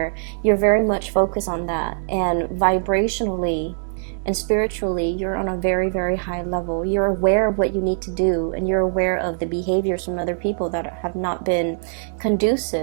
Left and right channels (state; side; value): silent; left; digital silence